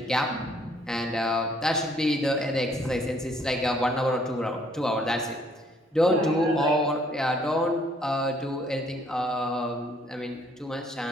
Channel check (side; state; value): both; normal; correlation 0.64